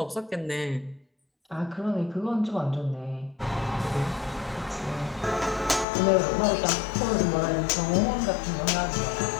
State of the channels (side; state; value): right; drops out; at 5.9 s